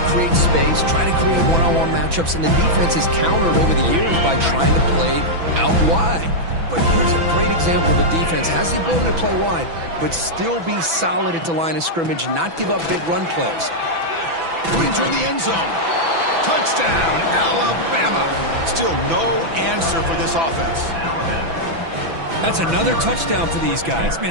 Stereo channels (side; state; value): left; late; 6.0 ms